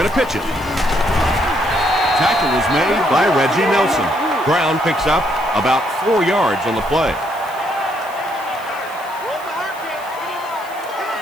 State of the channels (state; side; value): noise; left; hiss, 21 dB below the sound